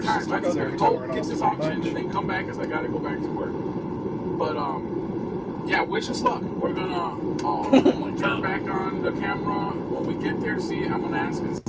Sabres. time. I just gotta Every go time get this we're on auction lunch. and then come back because I gotta go back to work. But yeah, wish us luck. We're gonna turn back on the camera when we get there. I'm gonna ask and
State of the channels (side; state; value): both; identical; correlation 1.00